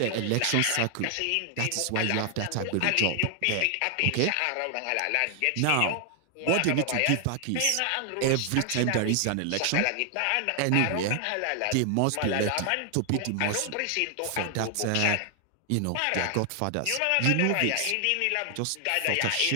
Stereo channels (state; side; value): different; both; correlation 0.00